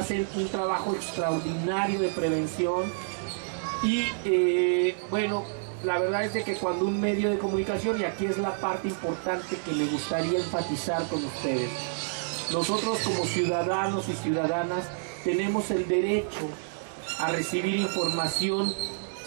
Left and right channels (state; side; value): silent; left; 59 dB below the other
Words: un trabajo extraordinario de prevención, y bueno, la verdad es de que cuando un medio de comunicación, y aquí es la parte importante que me gustaría enfatizar con ustedes, nosotros como ciudadanos y ciudadanas tenemos el derecho a recibir información